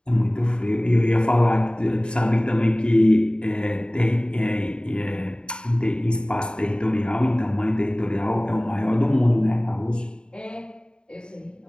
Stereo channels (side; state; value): right; late; 0.051 ms